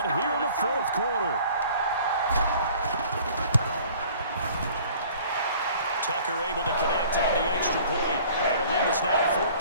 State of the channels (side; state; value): both; inverted; correlation -0.52